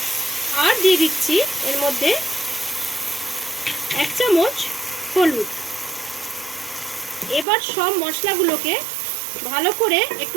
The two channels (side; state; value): left; drops out; at 7.5 s